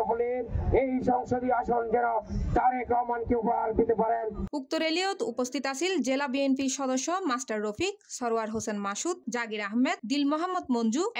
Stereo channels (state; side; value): identical; both; correlation 1.00